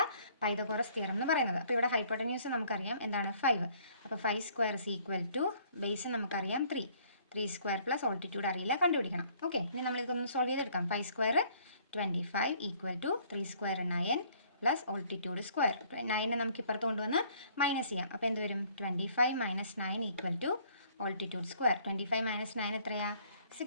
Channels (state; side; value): inverted; both; correlation -0.60